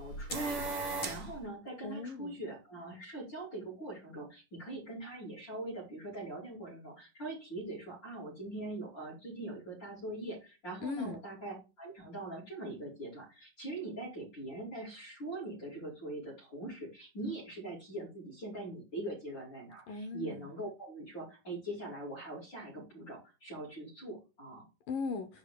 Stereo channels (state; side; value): late; right; 10 ms